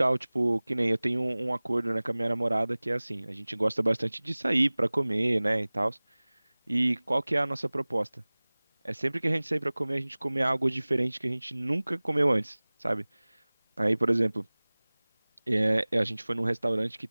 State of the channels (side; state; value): both; inverted; correlation -1.00